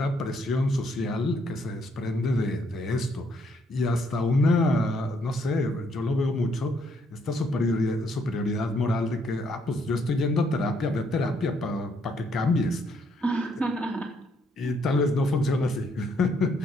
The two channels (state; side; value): normal; both; correlation 0.71